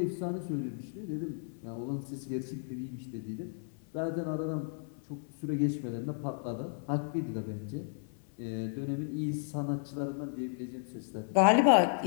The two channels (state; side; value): silent; right; 55 dB below the other